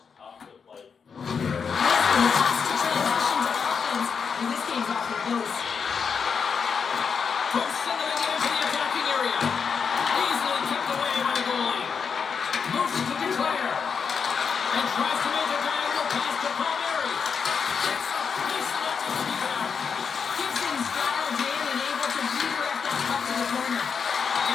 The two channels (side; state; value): right; quieter; 6.1 dB